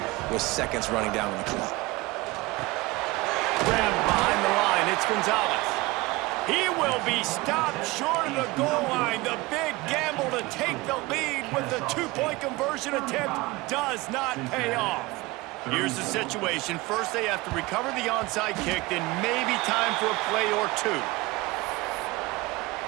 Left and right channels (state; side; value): quieter; left; 21.8 dB